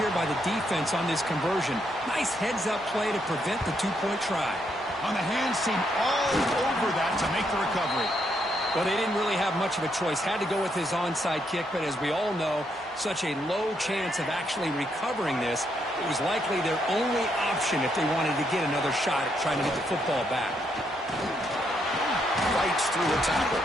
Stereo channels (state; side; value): normal; both; correlation 0.76